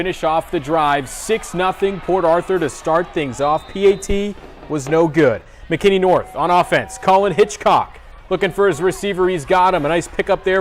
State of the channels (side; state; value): both; identical; correlation 1.00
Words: off the drive. 6-0 Port Arthur to start things off. PAT was no good. McKinney North on offense. Colin Hitchcock looking for his receiver. He's got him. A nice pickup